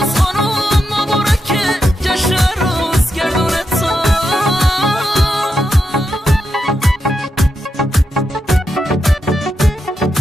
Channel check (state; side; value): normal; both; correlation 0.86